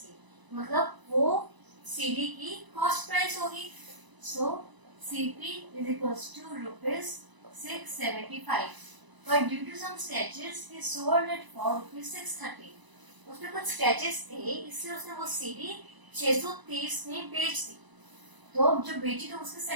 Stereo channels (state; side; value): late; left; 1.0 ms